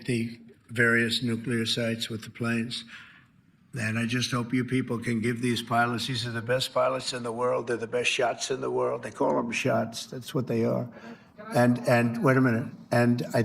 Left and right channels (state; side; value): identical; both; correlation 1.00